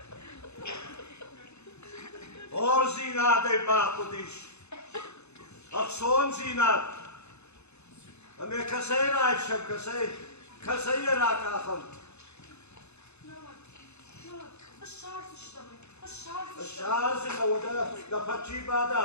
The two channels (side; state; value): right; late; 0.81 ms